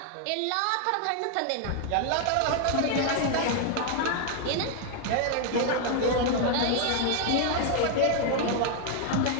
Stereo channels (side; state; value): both; different; correlation 0.00